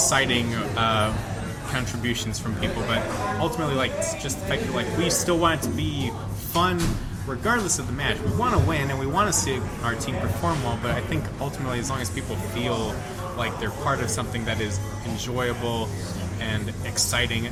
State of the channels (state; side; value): identical; both; correlation 1.00